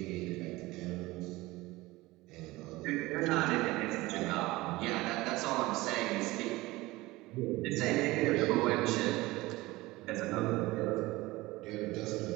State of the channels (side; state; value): left; quieter; 19.9 dB